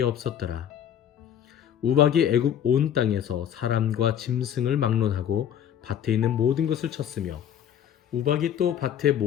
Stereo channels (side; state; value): right; quieter; 9.6 dB